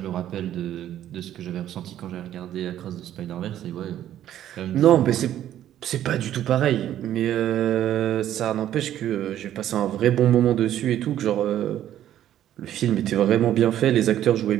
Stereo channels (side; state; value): left; quieter; 11.7 dB